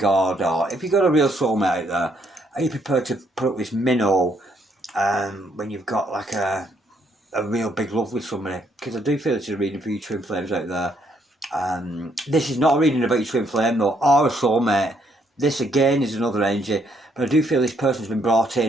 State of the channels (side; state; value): both; normal; correlation 0.71